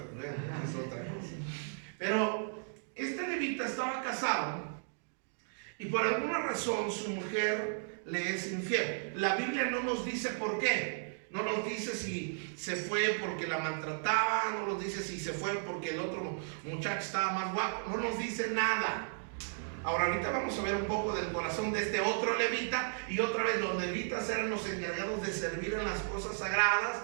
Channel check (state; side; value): silent; left; digital silence